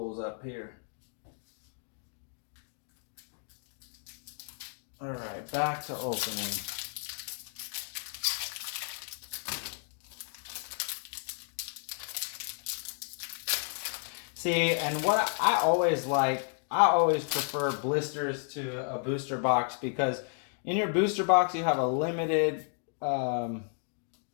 up here. All right, back to opening. See, and what I always prefer blisters to a booster box, because in your booster box you have a limited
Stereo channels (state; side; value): silent; right; 56 dB below the other